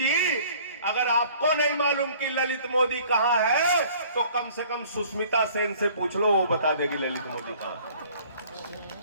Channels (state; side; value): inverted; both; correlation -0.53